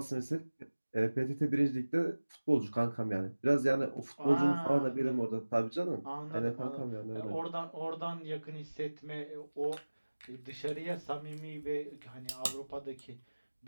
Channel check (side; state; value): both; inverted; correlation -1.00